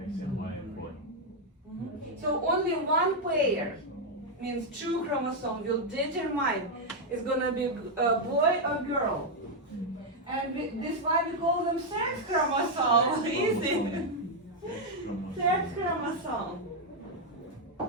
X and Y and boy. So only one pair, means two chromosomes, will determine it's gonna be a boy or girl. And this is why we call them sex chromosome. Easy. Sex chromosome.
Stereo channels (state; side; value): normal; both; correlation 0.00